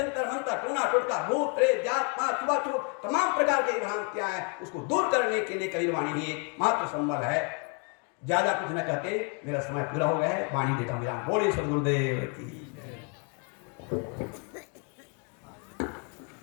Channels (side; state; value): right; quieter; 35.6 dB